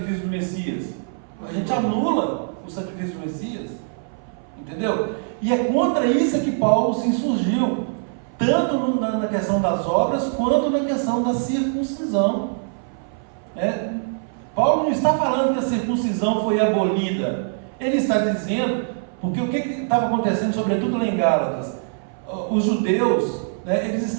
do Messias? A gente anula o sacrifício do Messias, entendeu? E é contra isso que Paulo se insurgiu, tanto na questão das obras, quanto na questão da circuncisão, né? Paulo não está falando que a circuncisão foi abolida, ele está dizendo, porque o que estava acontecendo, sobretudo lá em Gálatas, os judeus, né, eles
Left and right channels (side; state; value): left; silent; 59 dB below the other